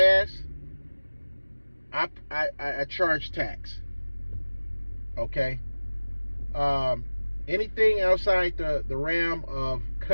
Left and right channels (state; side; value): inverted; both; correlation -1.00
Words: I charge tax. Okay? Anything outside the realm of